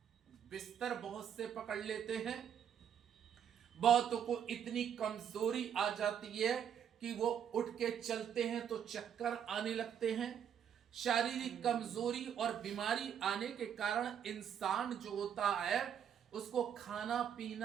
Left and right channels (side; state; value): left; quieter; 8.8 dB